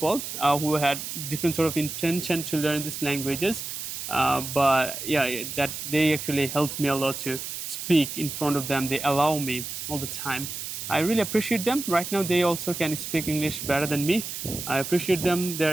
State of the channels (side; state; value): right; noise; hiss, 7 dB below the sound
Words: who had different sort of intention to learn these languages, but yeah, that they actually helped me a lot to speak in front of them. They allow me all the time. I really appreciate them. Right now they also can speak English better than me. I appreciate them,